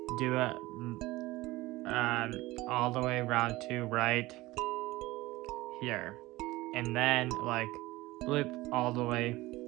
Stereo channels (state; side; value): quieter; left; 19.1 dB